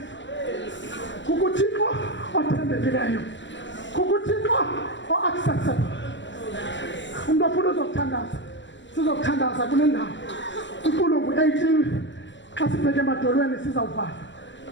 kukuThixo othembekileyo, kukuThixo o-accessible. Umuntu ofuna uzokuthandaza, sizokuthandaza kule ndawo. Intulo ngu-18. Xa sibheke emadolweni sizawuvala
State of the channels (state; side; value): late; right; 0.54 ms